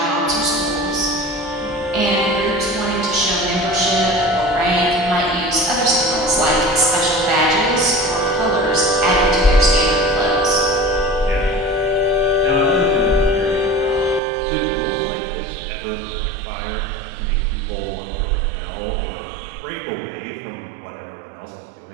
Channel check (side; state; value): left; drops out; at 14.2 s